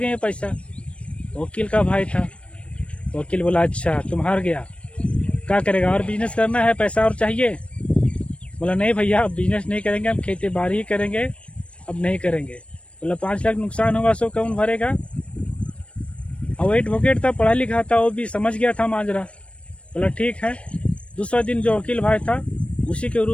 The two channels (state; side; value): late; right; 0.060 ms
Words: पैसा। वकील का भाई था, वकील बोला अच्छा तुम हार गया, क्या करेगा, और बिजनेस करना है, पैसा और चाहिए? बोला नहीं भैया अब बिजनेस नहीं करेंगे, हम खेती बाड़ी ही करेंगे, अब नहीं करेंगे। बोला 5 लाख नुकसान होगा सो कौन भरेगा? और वो एडवोकेट था, पढ़ा लिखा था, वो भी समझ गया था माजरा। बोला ठीक है। दूसरा दिन जो वकील भाई था उसी के